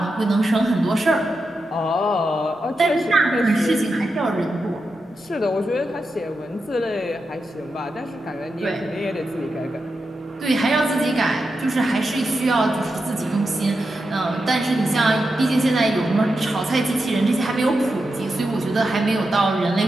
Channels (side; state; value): both; normal; correlation 0.88